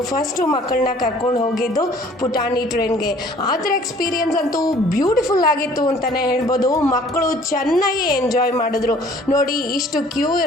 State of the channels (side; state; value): both; normal; correlation 0.54